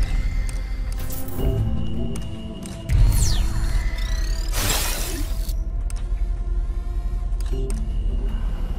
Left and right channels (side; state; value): both; identical; correlation 1.00